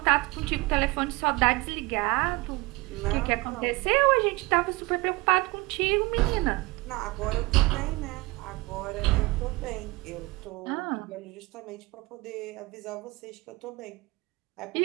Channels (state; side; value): quieter; left; 23.1 dB